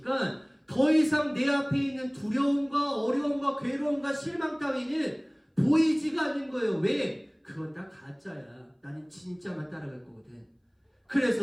더 이상 내 앞에 있는 두려움과 어려움과 괴로움과 실망 따위는 보이지가 않는 거예요. 왜? 그건 다 가짜야. 나는 진짜만 따라갈 거거든.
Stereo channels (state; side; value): identical; both; correlation 1.00